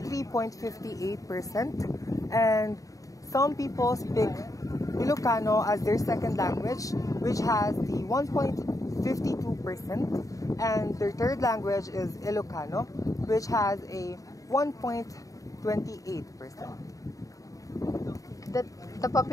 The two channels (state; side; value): late; right; 0.16 ms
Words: and some people speak Ilocano as their second language, which has the 1.52%, and their third language is Ilocano, which has a 1.28%. The